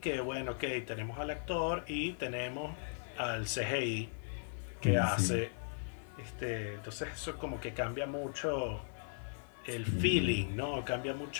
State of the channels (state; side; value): silent; right; digital silence